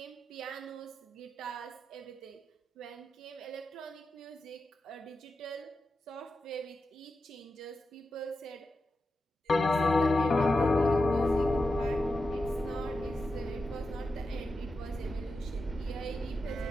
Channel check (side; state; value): both; normal; correlation 0.90